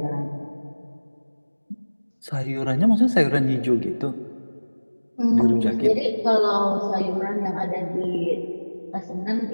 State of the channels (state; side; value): inverted; both; correlation -1.00